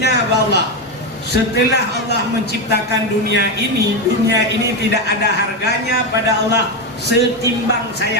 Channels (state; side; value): normal; both; correlation 0.11